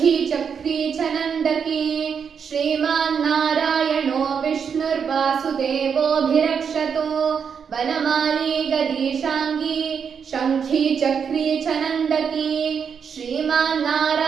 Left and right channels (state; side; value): quieter; left; 6.8 dB